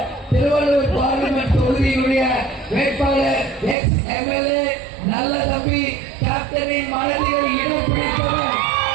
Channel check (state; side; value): drops out; left; at 3.8 s